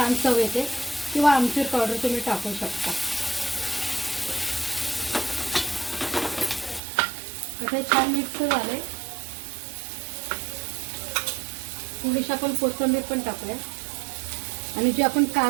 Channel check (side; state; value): left; drops out; at 6.8 s